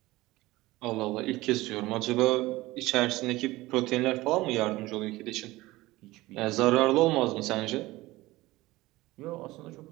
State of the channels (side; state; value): left; quieter; 19.1 dB